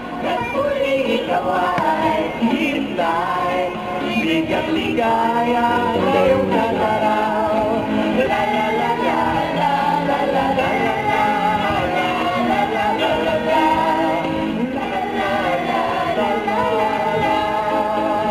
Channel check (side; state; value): both; identical; correlation 1.00